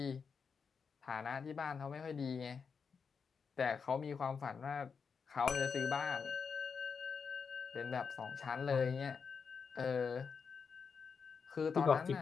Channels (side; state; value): right; quieter; 5.8 dB